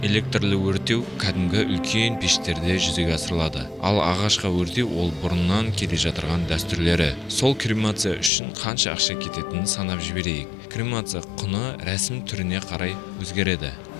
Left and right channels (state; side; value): drops out; right; at 8.3 s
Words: Электрлі өртеу кәдімгі үлкен пештерде жүзеге асырылады. Ал ағашқа өртеу ол бұрыннан келе жатырған дәстүрлері. Сол кремация үшін қанша ақша кететінін санап жіберейік. Кремация құны рәсім түріне қарай өзгереді.